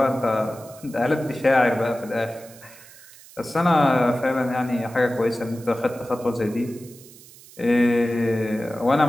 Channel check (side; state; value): right; noise; hiss, 21 dB below the sound